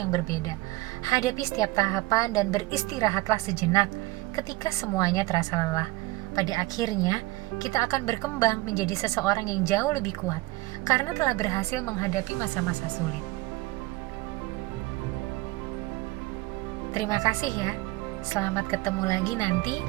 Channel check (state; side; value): quieter; left; 20.2 dB